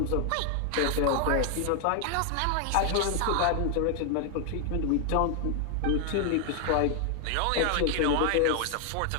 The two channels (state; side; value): different; both; correlation 0.00